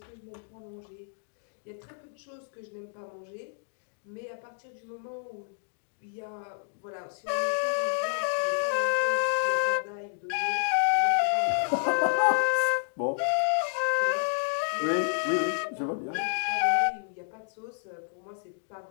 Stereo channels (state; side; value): silent; right; digital silence